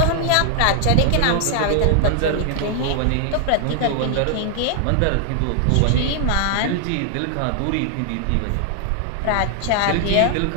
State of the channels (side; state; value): both; different; correlation 0.00